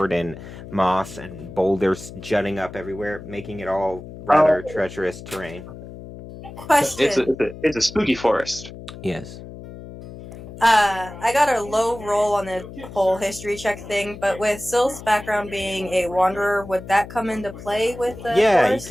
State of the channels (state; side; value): noise; left; hum, 14 dB below the sound